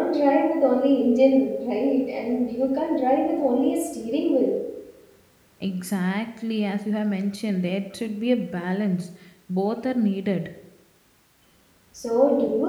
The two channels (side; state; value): both; identical; correlation 1.00